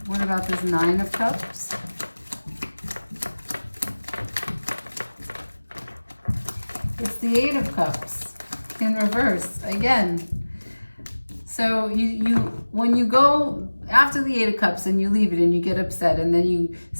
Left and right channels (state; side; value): inverted; both; correlation -1.00